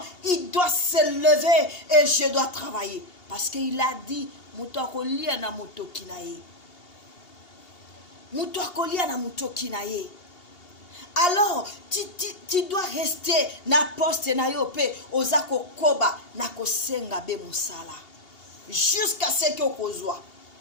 Il doit se lever et je dois travailler. Parce qu'il a dit, Mutakolia na mutokinaye. Alors, tu dois rester na poste na yo pe ozako koba na kosenga be musala. Jusqu'à ce que okozwa.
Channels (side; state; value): right; late; 2.8 ms